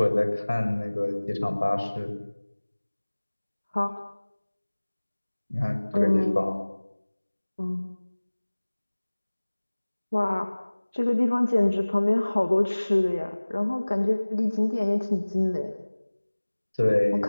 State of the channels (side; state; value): both; inverted; correlation -1.00